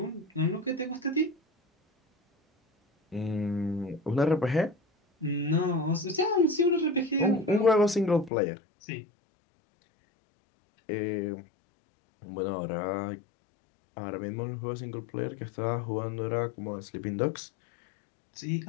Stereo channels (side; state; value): right; drops out; at 8.3 s